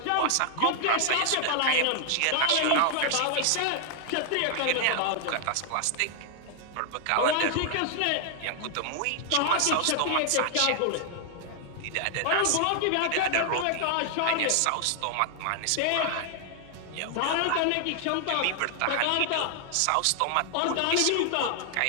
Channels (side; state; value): both; different; correlation 0.00